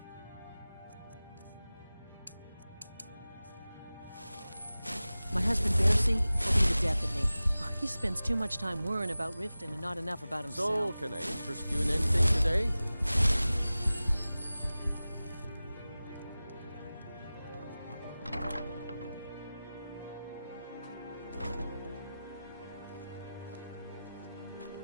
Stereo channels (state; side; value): inverted; both; correlation -0.97